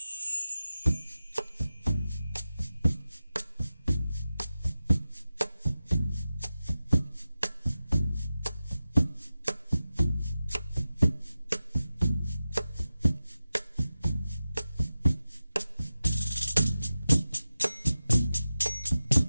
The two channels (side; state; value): both; inverted; correlation -0.94